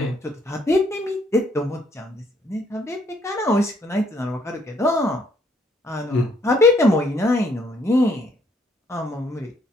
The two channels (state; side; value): normal; both; correlation 0.68